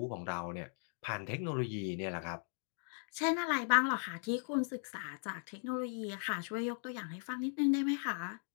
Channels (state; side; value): silent; right; 52 dB below the other